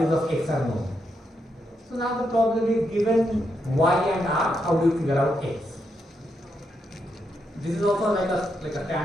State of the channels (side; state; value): both; normal; correlation 0.81